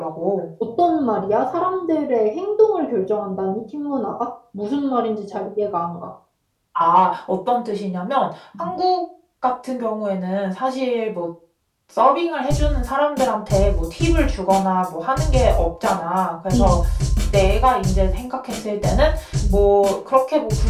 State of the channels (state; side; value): identical; both; correlation 1.00